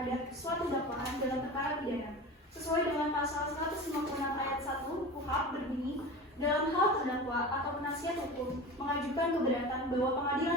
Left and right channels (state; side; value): normal; both; correlation 0.32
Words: suatu dakwaan dalam perkara pidana. Sesuai dengan pasal 156 ayat 1 KUHP berbunyi, dalam hal terdakwa atau penasihat hukum mengajukan keberatan bahwa